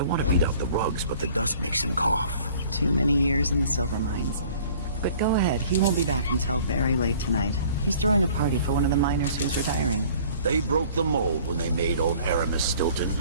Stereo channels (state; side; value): inverted; both; correlation -0.52